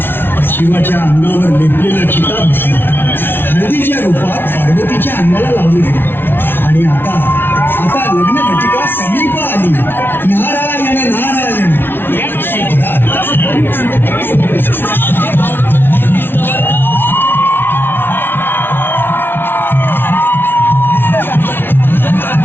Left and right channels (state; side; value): late; right; 0.11 ms